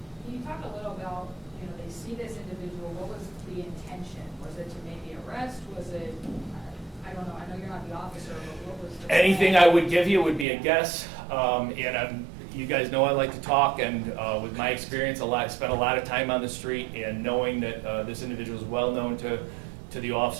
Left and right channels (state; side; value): drops out; left; at 10.5 s